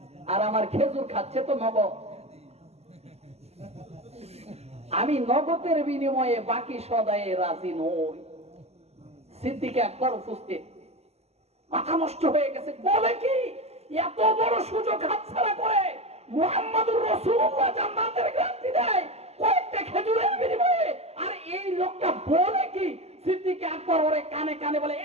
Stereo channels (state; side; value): late; left; 0.30 ms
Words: আর আমার খেজুর খাচ্ছে তো নগদ। আমি নগদের বিনিময়ে বাকি সদায়ে রাজি নই। সিদ্দিক আকবর উপস্থিত, মাথা নষ্ট হয়ে গেছে। বলে কি, এত বড় সুযোগ হাতছাড়া করে মুহাম্মদুর রাসূলুল্লাহ জান্নাতের গ্যারান্টি দেয় কয়েকটা খেজুরের বিনিময়ে, আর এই লোকটা বলে কি? সিদ্দিক আকবর ওরে কানে কানে বলে,